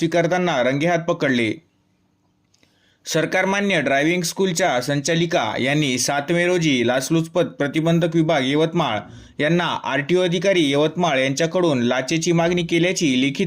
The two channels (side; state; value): both; identical; correlation 1.00